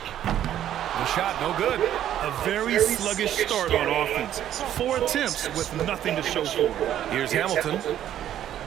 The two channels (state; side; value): quieter; left; 11.2 dB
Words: shot no good. A very sluggish start on offense. 4 attempts with nothing to show for it. Here's Hamilton.